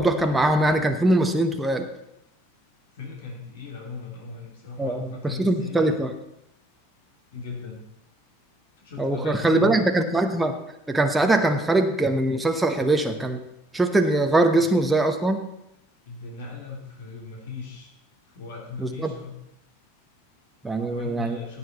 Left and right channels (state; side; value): normal; both; correlation 0.70